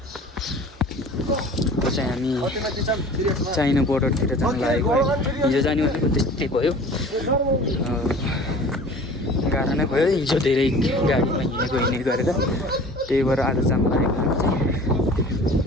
चाहिँ हामी चाइना बोर्डरतिर जान लागेको है। हिजो जाने भनेको त्यस्तै भयो, गाह्रो नै भयो। हिजो धेरै गाडीमा हिँडेको गरेर त्यही भएर आज जान लागेको हामी चाहिँ।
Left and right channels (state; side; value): normal; both; correlation 0.44